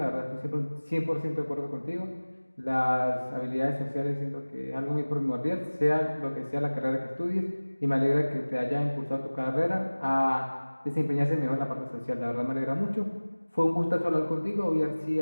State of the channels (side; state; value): both; inverted; correlation -1.00